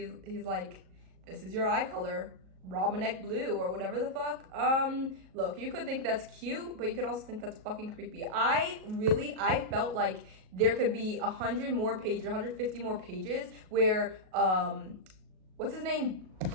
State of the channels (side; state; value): left; late; 38 ms